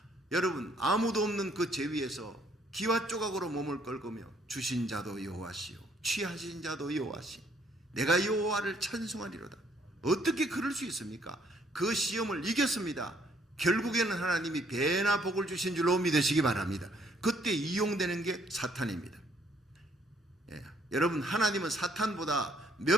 여러분, 아무도 없는 그 제위에서 기와 조각으로 몸을 긁으며 주신 자도 여호와시요 취하신 자도 여호와시, 내가 여호와를 찬송하리로다. 어떻게 그럴 수 있습니까? 그 시험을 이겼습니다. 결국에는 하나님이 배나 복을 주신 줄로 믿으시기 바랍니다. 그때 이용되는 게 사탄입니다. 여러분, 하나님은 사탄보다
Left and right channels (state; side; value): normal; both; correlation 0.66